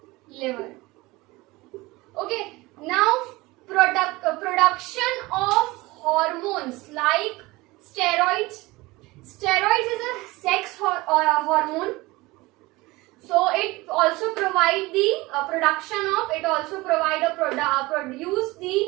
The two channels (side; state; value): left; quieter; 21.4 dB